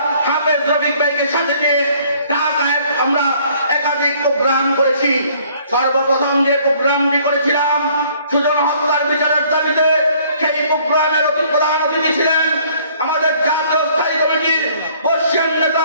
হাফেজ রফিক ভাইকে সাথে নিয়ে ঢাকায় আমরা একাধিক প্রোগ্রাম করেছি। সর্বপ্রথম যে প্রোগ্রামটি করেছিলাম সুজন হত্যার বিচারের দাবিতে, সেই প্রোগ্রামের প্রধান অতিথি ছিলেন আমাদের জাতীয় স্থায়ী কমিটির বর্ষিয়ান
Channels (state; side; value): inverted; both; correlation -0.59